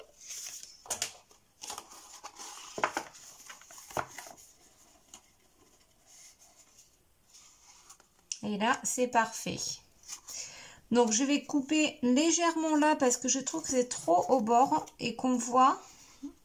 Et là, c'est parfait. Donc, je vais couper légèrement là parce que je trouve que c'est trop au bord et qu'on voit,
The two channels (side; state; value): both; identical; correlation 1.00